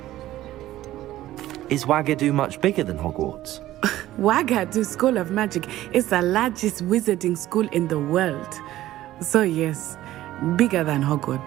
Is Ouagadougou much bigger than Hogwarts? Ouagadougou School of Magic is the largest wizarding school in the world. So yes, bigger than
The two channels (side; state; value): left; quieter; 14.7 dB